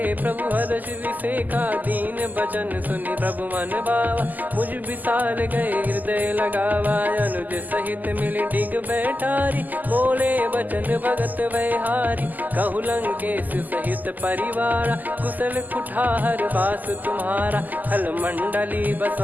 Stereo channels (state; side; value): late; left; 0.083 ms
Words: प्रभु हर्ष विसेखा, दीन बचन सुनि प्रभु मन भावा। मुझ विशाल गए हृदय लगावा, अनुज सहित मिल डिग बैठारी। बोले बचन भगत भयहारी, कहु लंकेश सहित परिवारा। कुशल कुठार बास तुम्हारा, खल मंडली